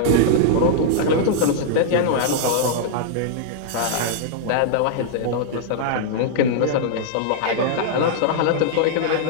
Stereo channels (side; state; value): both; different; correlation -0.01